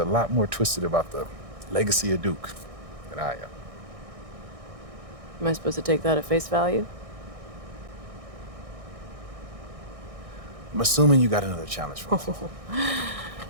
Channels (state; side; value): late; left; 1.6 ms